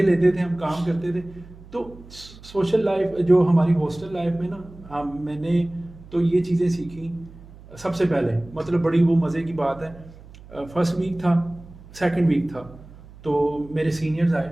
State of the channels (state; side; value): noise; right; hum, 20 dB below the sound